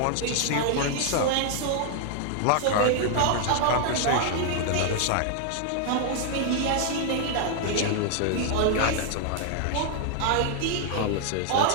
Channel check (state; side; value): different; both; correlation 0.00